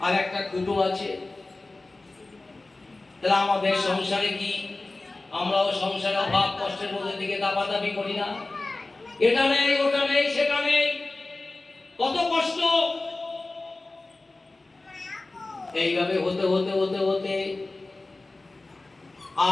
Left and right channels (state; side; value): quieter; right; 3.1 dB